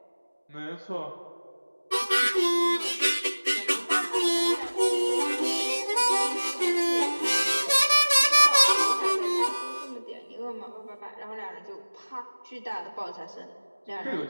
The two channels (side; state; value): both; inverted; correlation -1.00